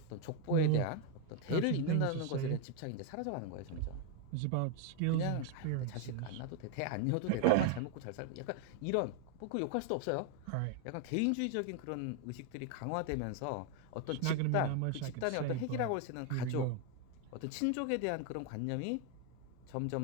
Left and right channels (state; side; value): different; both; correlation 0.01